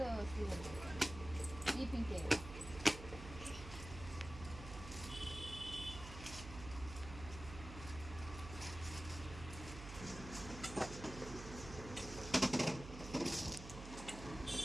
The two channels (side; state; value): right; noise; hum, 10 dB below the sound